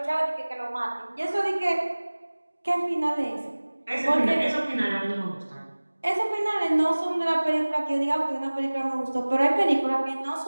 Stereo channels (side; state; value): both; inverted; correlation -1.00